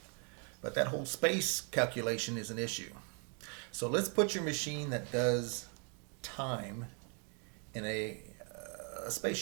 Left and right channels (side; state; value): left; quieter; 39.1 dB